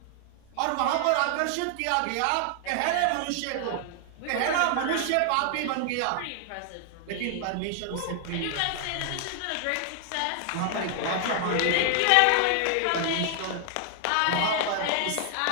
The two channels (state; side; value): different; both; correlation 0.00